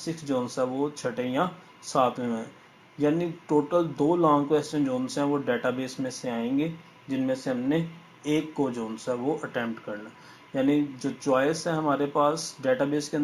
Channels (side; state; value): both; identical; correlation 1.00